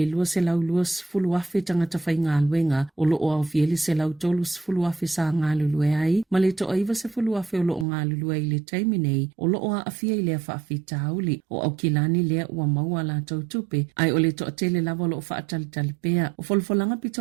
lua se lau lua sfulu afe tangata whai ngā luenga o lo o au fieli se lau tolu sfulu afe sa ngā lulue ai ma le to aiva se fulu afe o lo o ngā lulue i le taiminei o lo o a afia i lea whaafi tauli o au kilani lea ua maua la tau tupe ai o le to atele lava o lo o whaatalitali pea o folfolanga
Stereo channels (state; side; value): drops out; left; at 7.9 s